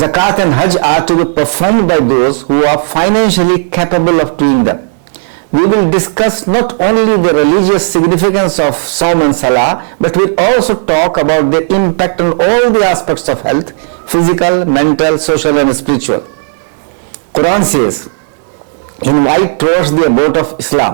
and Hajj are to be performed by those who are financially capable of doing them. We will discuss not only the religious significance of Saum and Salah, but we'll also talk about their impact on all the aspects of health, physical, mental, social and spiritual. Quran says, invite towards the abode of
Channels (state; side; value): silent; left; digital silence